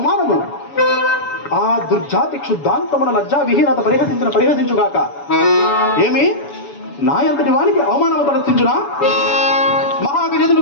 ఆ దుర్జాతి క్షుద్ధాంతమున లజ్జా విహీనత పరిహసించుగాక. ఏమి నాయంతటి వానికి అవమానము తలచించునా? మహాగజదుని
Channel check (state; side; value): late; right; 7.0 ms